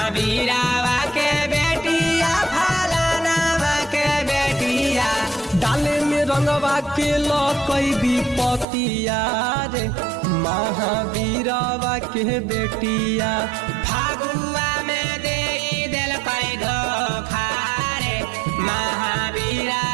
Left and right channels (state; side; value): drops out; left; at 8.7 s